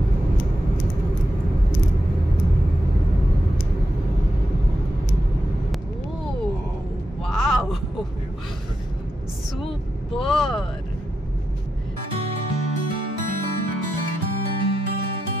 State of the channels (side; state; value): both; normal; correlation 0.87